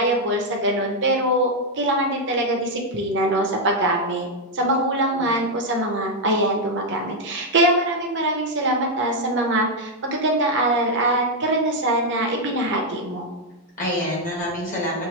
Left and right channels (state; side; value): normal; both; correlation 0.01